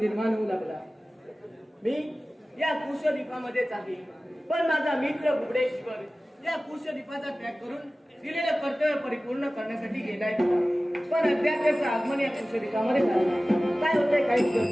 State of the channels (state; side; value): normal; both; correlation 0.97